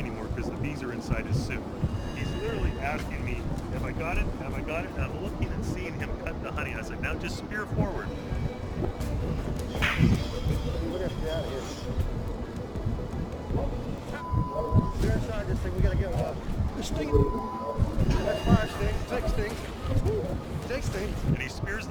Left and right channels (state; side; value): identical; both; correlation 1.00